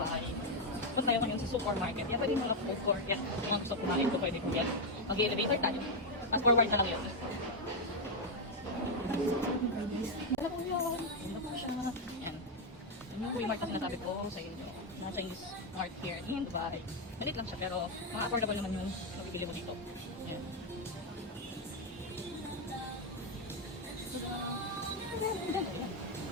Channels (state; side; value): normal; both; correlation 0.02